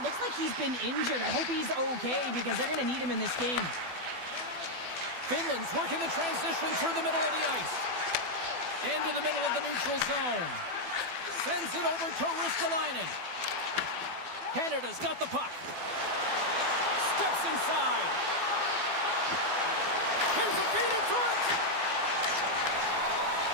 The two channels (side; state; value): left; late; 12 ms